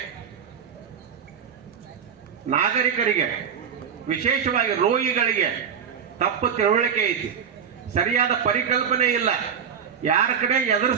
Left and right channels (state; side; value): quieter; left; 7.4 dB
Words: ನಾಗರಿಕರಿಗೆ, ವಿಶೇಷವಾಗಿ ರೋಗಿಗಳಿಗೆ ತಪ್ಪು ತಿಳುವಳಿಕೆ ಐತಿ, ಸರಿಯಾದ ಪರಿಕಲ್ಪನೆ ಇಲ್ಲ. ಯಾರ ಕಡೆ ಎದುರು